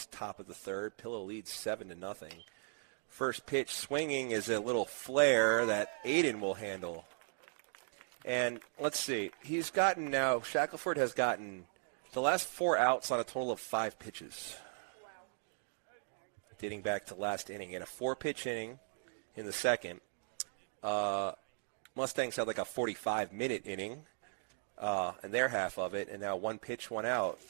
top of the third. Pillow leads 7-0. First pitch swinging is a little flare that Aiden will handle. And let's see, he's gotten now, Shackelford has gotten the last 4 outs on a total of 5 pitches. Wow. Dating back to last inning. In a 4-pitch inning in the second, Mustangs had like a 45-minute inning in their half of it, and now 1 pitch, 1 out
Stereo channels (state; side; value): silent; left; digital silence